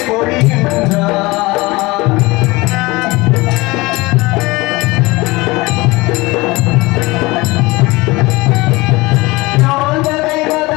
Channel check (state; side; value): quieter; right; 22.5 dB